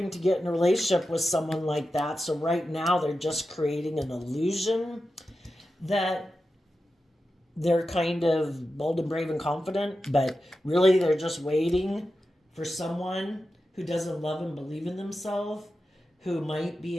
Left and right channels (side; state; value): both; normal; correlation 0.91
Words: to get in a relationship with someone like that. So right now they're just creating an illusion that they're kind of bold and brave and confident, but really they're just waiting for someone who doesn't love and believe in themselves, who might